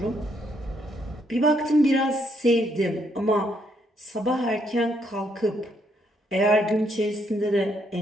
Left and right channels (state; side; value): normal; both; correlation 0.73